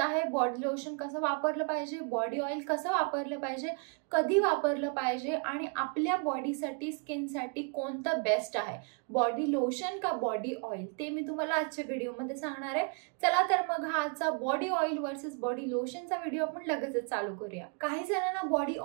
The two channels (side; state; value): left; quieter; 37.4 dB